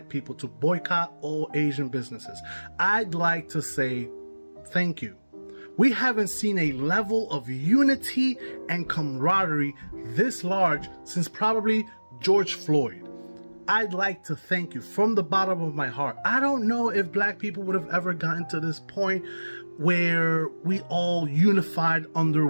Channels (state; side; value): inverted; both; correlation -1.00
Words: people to boycott all Asian businesses, I'd like to say thank you. We haven't seen a level of unity and camaraderie this large since probably George Floyd. I'd like to thank you from the bottom of my heart. I don't know if black people would have ever gotten to this point where we all unified under